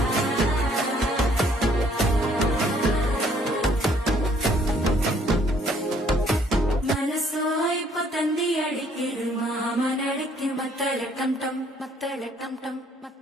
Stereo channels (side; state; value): both; normal; correlation 0.63